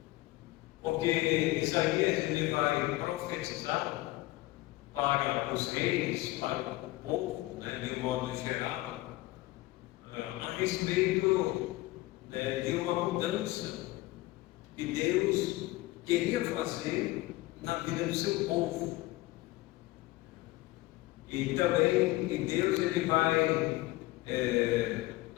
Porque Isaías ele vai profetizar para os reis, para o povo, né, de um modo geral, a respeito de uma mudança que Deus queria fazer na vida do seu povo. E também Deus ele vai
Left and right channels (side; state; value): right; quieter; 19.0 dB